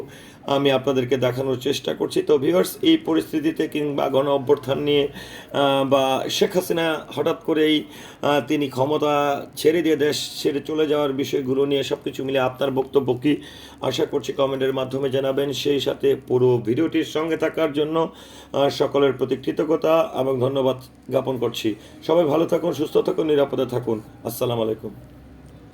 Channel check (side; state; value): both; identical; correlation 1.00